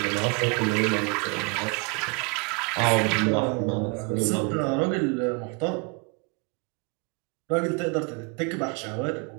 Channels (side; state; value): left; quieter; 31.7 dB